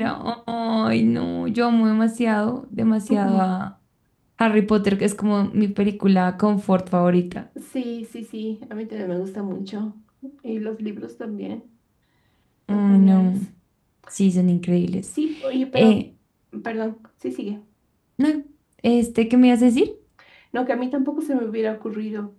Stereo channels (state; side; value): identical; both; correlation 1.00